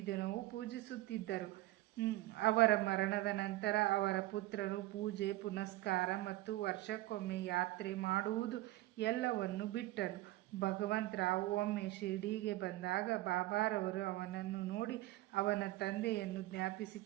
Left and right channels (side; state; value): left; quieter; 17.4 dB